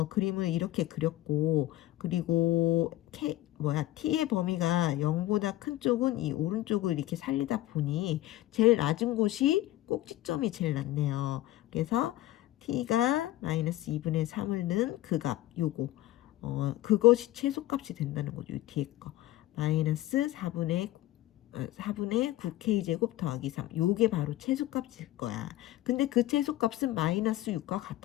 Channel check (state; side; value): quieter; right; 15.5 dB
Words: 그림을 이렇게 그렸고, 그리고 t의 범위가 0보다 큰 쪽은 이 오른쪽을 이렇게 살리다 보니 제일 낮은 곳이 꼭지점이 제일 낮네요. 그래서 t가 마이너스 2분의 3을 넣은 그 값, 요거. 그것이 최소값이 된다는 거죠. 이 뒤에 거. 마이너스 4분의 9k제곱 더하기 3. 요게 바로 최소값일 거야. 근데 그 최소값은 마이너스 6과